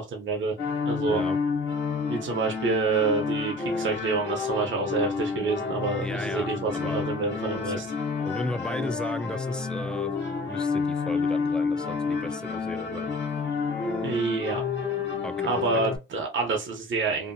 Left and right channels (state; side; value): normal; both; correlation 0.43